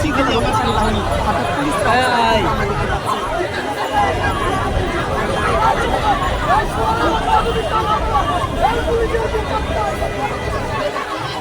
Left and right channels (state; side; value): identical; both; correlation 1.00